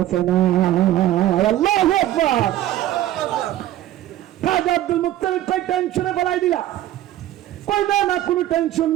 না। আল্লাহু আকবার। খাজা আব্দুল মুত্তালিব কই টেনশনে ফেলাই দিলা? কই না, না কোনো টেনশন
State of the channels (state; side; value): quieter; left; 13.6 dB